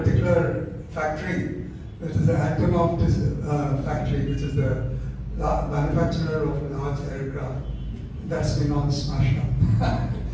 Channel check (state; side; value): identical; both; correlation 1.00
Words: factory, which is the Antonov factory, which is the manufacturer of large aircraft, that's been all smashed up.